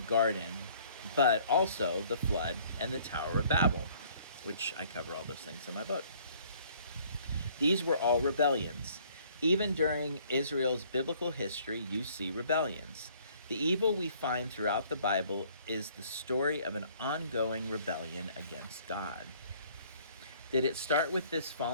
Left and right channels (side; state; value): both; inverted; correlation -0.58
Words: but also the flood and the Tower of Babel, which I cover all those things in my book. These were all rebellions. Even during Israel's biblical history, you see rebellions. The evil we find throughout the Bible is the story of an ongoing rebellion against God. Did it start with this